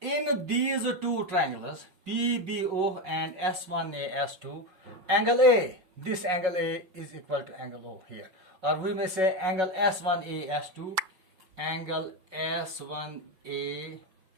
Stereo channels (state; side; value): late; left; 5.4 ms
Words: these two triangles, PBO and S1A S2, angle A, this angle A is equal to angle O here. Or we may say angle S1A S2, angle S1A